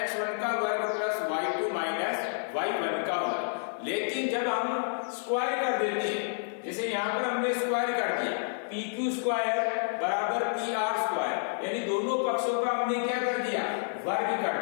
का वर्ग प्लस y2 माइनस y1 का वर्ग। लेकिन जब हम स्क्वायर कर देते हैं, जैसे यहाँ पर हमने स्क्वायर कर दिया, PQ स्क्वायर बराबर PR स्क्वायर, यानी दोनों पक्षों का हमने क्या कर दिया, वर्ग कर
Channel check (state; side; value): silent; right; 58 dB below the other